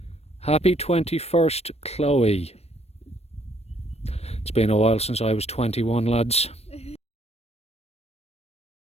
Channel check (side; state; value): right; late; 0.30 ms